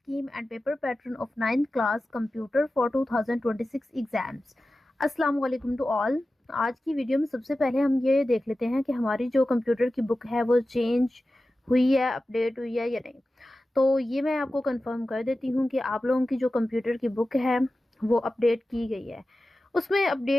and paper pattern of 9th class computer for 2026 exams. अस्सलाम वालेकुम to all. आज की video में सबसे पहले हम ये देख लेते हैं कि हमारी जो कंप्यूटर की बुक है वो चेंज हुई है, अपडेट हुई है या नहीं। तो ये मैं आपको कंफर्म कर देती हूँ कि आप लोगों की जो कंप्यूटर की बुक है वो अपडेट की गई है। उसमें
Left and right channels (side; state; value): both; normal; correlation 0.95